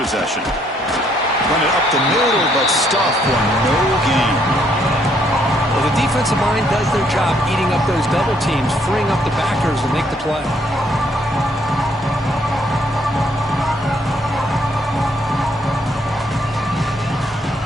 Run it up the middle, but stuff for no gain. Well, the defensive line does their job eating up those double teams, freeing up the backers to make the play.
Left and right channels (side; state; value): both; normal; correlation 0.69